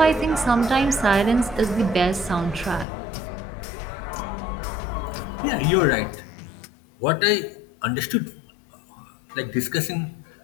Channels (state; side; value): drops out; right; at 2.9 s